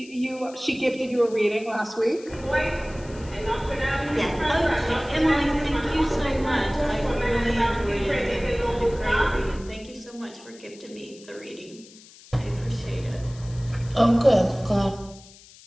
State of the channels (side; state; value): left; noise; hiss, 22 dB below the sound